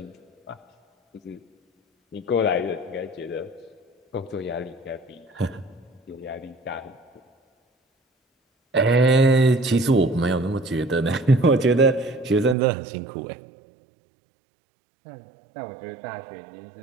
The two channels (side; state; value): left; drops out; at 12.6 s